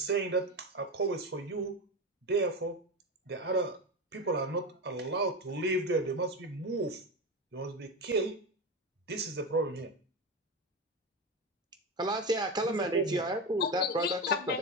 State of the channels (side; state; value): both; normal; correlation 0.19